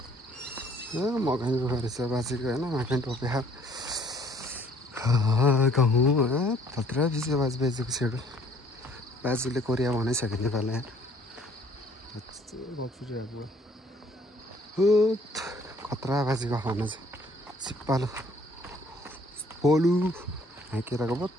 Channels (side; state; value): both; normal; correlation 0.60